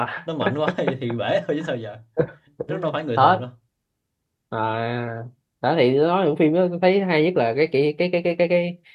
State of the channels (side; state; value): both; identical; correlation 1.00